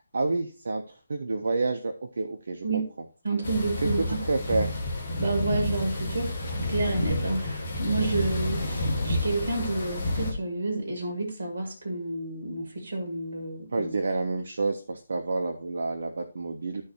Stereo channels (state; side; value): inverted; both; correlation -0.84